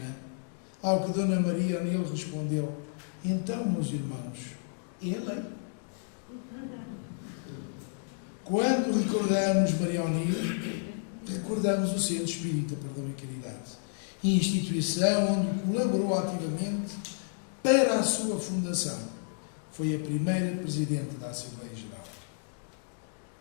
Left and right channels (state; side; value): silent; right; digital silence